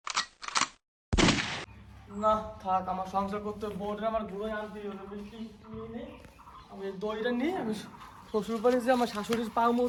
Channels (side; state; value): both; identical; correlation 1.00